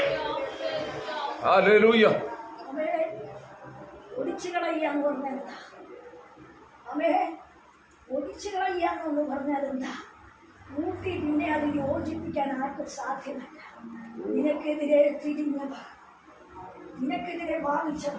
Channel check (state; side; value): identical; both; correlation 1.00